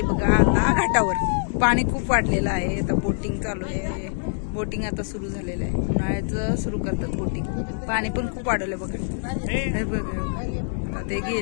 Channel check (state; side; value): silent; right; 62 dB below the other